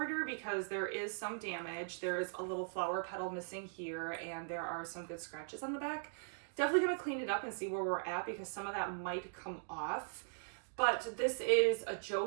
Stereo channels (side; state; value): left; silent; digital silence